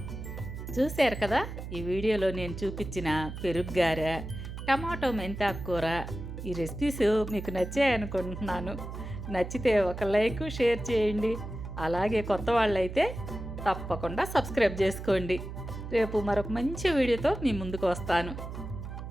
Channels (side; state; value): right; noise; hum, 9 dB below the sound